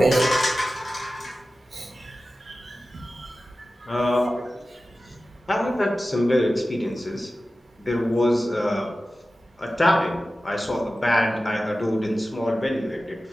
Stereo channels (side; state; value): both; normal; correlation 0.95